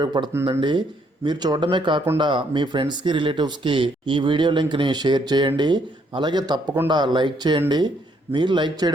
మీరు చూడడమే కాకుండా మీ ఫ్రెండ్స్కి రిలేటివ్స్కి ఈ వీడియో లింక్ని షేర్ చేయండి. అలాగే తప్పకుండా లైక్ చేయండి. మీరు లైక్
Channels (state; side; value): normal; both; correlation 0.70